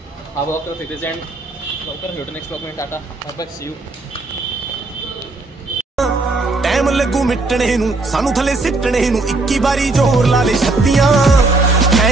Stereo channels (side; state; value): left; quieter; 3.2 dB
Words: हा ब्लॉग तर तिथेच एंड. लवकरच भेटू नेक्स्ट ब्लॉग मध्ये. Tata bye, see you. Time ਲੱਗੂ ਮਿਟਣੇ ਨੂੰ ਸਾਨੂੰ ਥੱਲੇ ਸਿੱਟਣੇ ਨੂੰ 21 ਵਾਰੀ ਜ਼ੋਰ ਲਾ ਲੈ ਛੱਤੀਆਂ